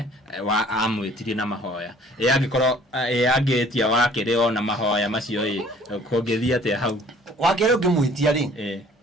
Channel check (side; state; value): both; normal; correlation 0.54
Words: wa amwitirie na mahoya angikorwo angitia wakiri ona mahoya macio kungithia atia hau wakiri ungimwitia ri